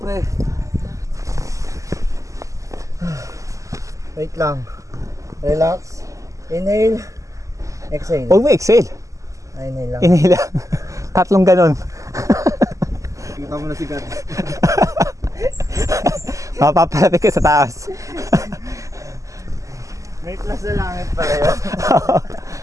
pre. Wait lang. Relax. Inhale. Exhale. Huwag mo exhale. Inhale lang. Inhale lang. Tatlong ganon. Kita mo na si God. Mapapalapit ka sa taas. May plus na langit pala yun.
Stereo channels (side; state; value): left; late; 0.16 ms